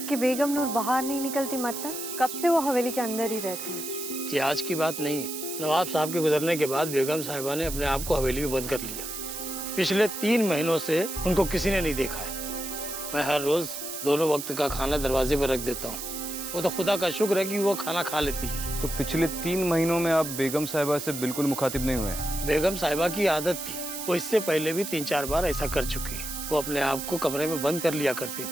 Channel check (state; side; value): noise; right; hiss, 7 dB below the sound